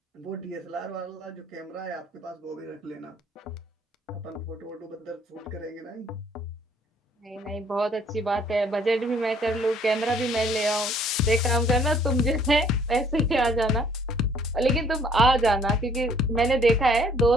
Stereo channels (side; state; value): both; normal; correlation 0.61